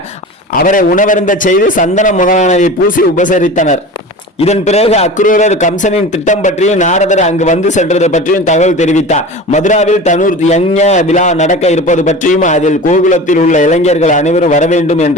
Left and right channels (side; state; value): both; normal; correlation 0.34